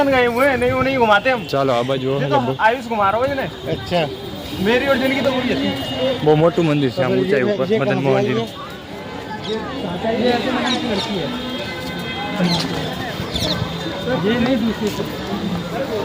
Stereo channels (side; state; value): both; identical; correlation 1.00